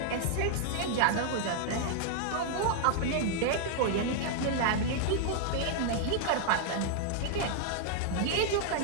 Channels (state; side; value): different; both; correlation -0.01